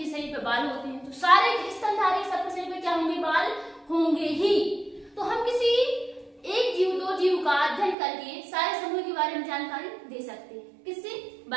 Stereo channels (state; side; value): drops out; left; at 8.0 s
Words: शरीर पे बाल होते हैं तो सारे स्तनधारी सबके शरीर पे क्या होंगे, बाल होंगे ही। तो हम किसी एक जीव दो जीव का अध्ययन करके सारे समूह के बारे में जानकारी दे सकते हैं। किससे?